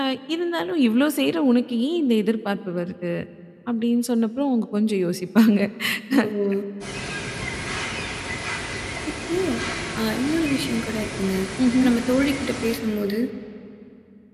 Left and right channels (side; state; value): both; identical; correlation 1.00